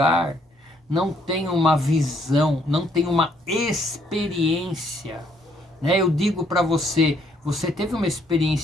não tem uma visão, não tem uma experiência, né? Eu digo para você, você teve uma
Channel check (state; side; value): normal; both; correlation 0.68